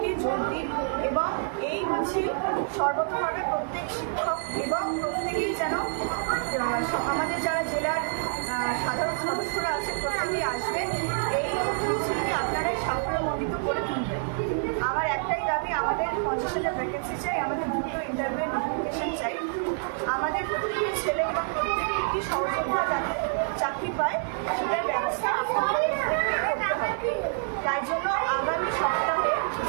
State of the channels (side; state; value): left; silent; digital silence